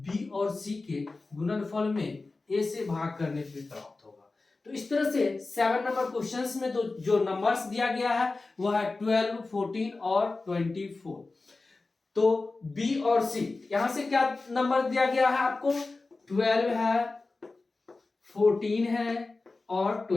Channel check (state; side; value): quieter; right; 3.6 dB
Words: b और c के गुणनफल में a से भाग करने पे प्राप्त होगा। तो इस तरह से 7 नंबर क्वेश्चंस में तो जो नंबर्स दिया गया है वह है 12, 14 और 24। तो B और C, यहां से क्या नंबर दिया गया है आपको? 12 है, 14 है और